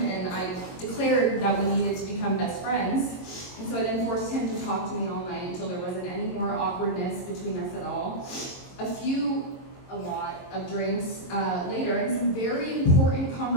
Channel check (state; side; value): late; right; 22 ms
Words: and I declared that we needed to become best friends. And so I then forced him to talk to me all night until there wasn't any more awkwardness between us at all. A few a lot of drinks later and some very important